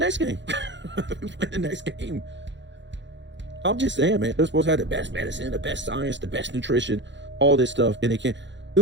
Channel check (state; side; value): late; left; 0.53 ms